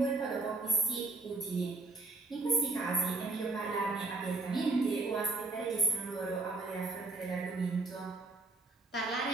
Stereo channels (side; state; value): left; quieter; 3.2 dB